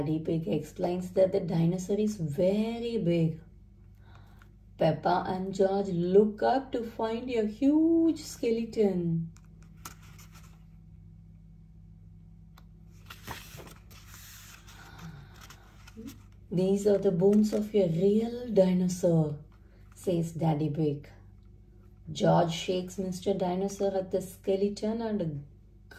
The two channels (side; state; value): both; identical; correlation 1.00